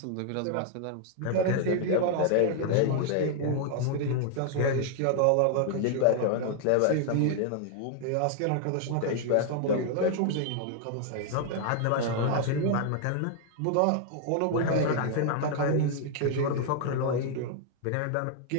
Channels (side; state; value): both; different; correlation 0.00